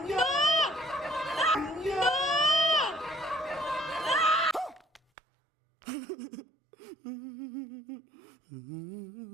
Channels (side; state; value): left; drops out; at 5.0 s